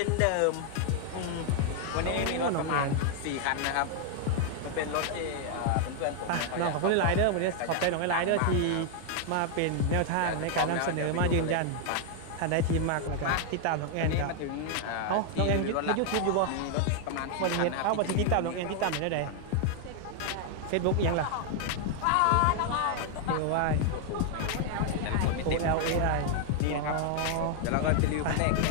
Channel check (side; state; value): both; different; correlation 0.00